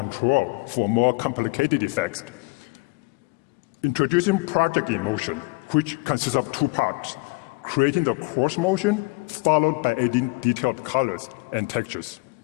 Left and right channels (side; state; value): right; quieter; 26.9 dB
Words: for more complicated effects? Introducing Project in Motion, which consists of 2 parts. Creating the coarse motion, followed by adding detailed colors and textures.